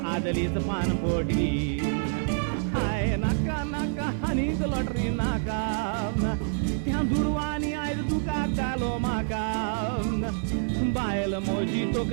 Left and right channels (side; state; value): left; silent; 55 dB below the other